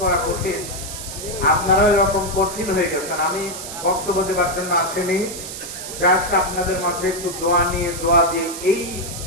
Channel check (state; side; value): noise; right; hiss, 9 dB below the sound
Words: কঠিন, আপনারাও এরকম কঠিন হয়ে গেছেন। আমি বক্তব্য দেবার জন্য আসেনি, জাস্ট আপনাদের মাঝে একটু দোয়া দিয়ে এই